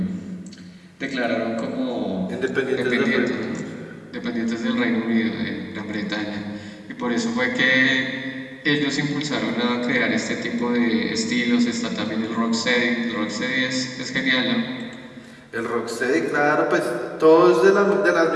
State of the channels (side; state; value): both; identical; correlation 1.00